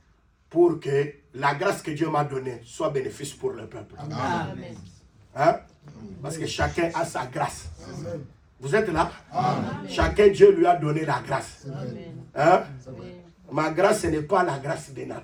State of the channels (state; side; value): identical; both; correlation 1.00